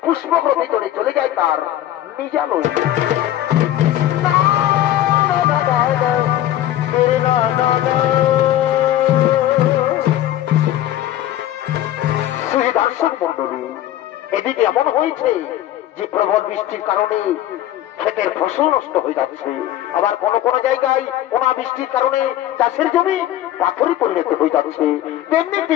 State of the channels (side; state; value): right; quieter; 12.9 dB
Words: পুষ্পগ্রহ ভিতরে চলে যায় তার নিজালয়ে। দর্শক মন্ডলী, এদিকে এমন হয়েছে যে প্রবল বৃষ্টির কারণে ক্ষেতের ফসল নষ্ট হয়ে যাচ্ছে, আবার কোন কোন জায়গায় অনাবৃষ্টির কারণে চাষের জমি পাথরে পরিণত হয়ে যাচ্ছে। তেমনি একটি